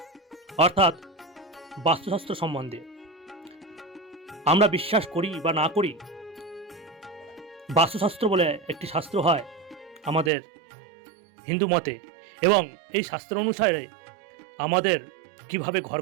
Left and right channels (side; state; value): left; drops out; at 10.3 s